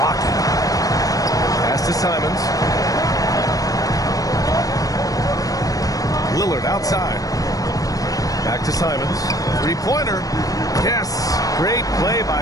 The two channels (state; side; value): late; right; 0.17 ms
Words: Pass to Simons. Lillard outside. Back to Simons. Three-pointer. Yes. Great play